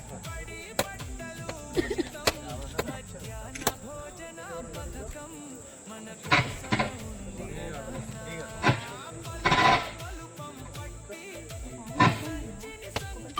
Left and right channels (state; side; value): identical; both; correlation 1.00